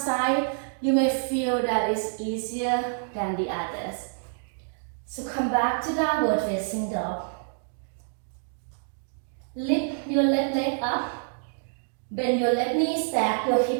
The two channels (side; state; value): left; silent; digital silence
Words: you may feel that it's easier than the others. So come back to downward facing dog. Lift your left leg up. Bend your left knee, stack your